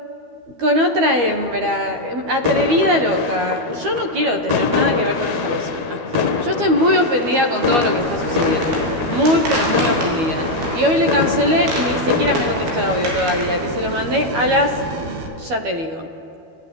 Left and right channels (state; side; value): late; left; 12 ms